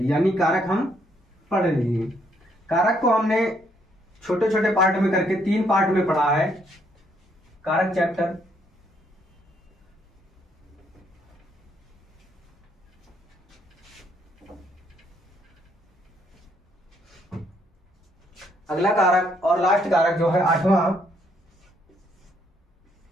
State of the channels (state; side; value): normal; both; correlation 0.71